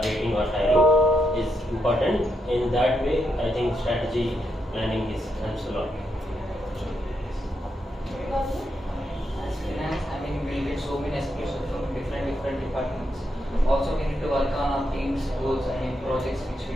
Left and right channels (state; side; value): normal; both; correlation 0.81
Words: rating or hiring is important. In that way, I think strategy planning helps a lot. As finance, I mean, we get so many aspirations from different departments. Also, we need to work on our team's goals and projects which we